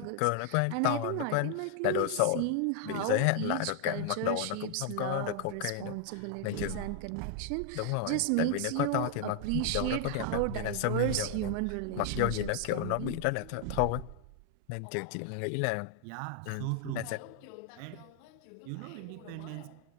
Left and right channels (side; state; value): both; different; correlation 0.00